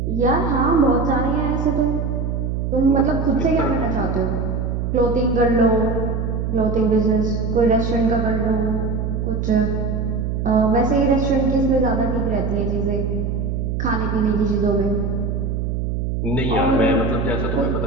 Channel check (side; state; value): right; noise; hum, 1 dB below the sound